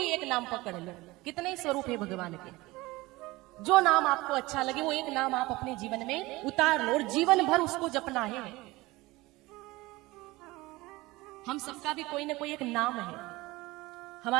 एक नाम पकड़ लो। कितने ही स्वरूप है भगवान के, जो नाम आपको अच्छा लगे वो एक नाम आप अपने जीवन में उतार लो और जीवन भर उसको जपना है। हम सबका भी कोई ना कोई एक नाम है।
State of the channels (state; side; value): quieter; left; 20.6 dB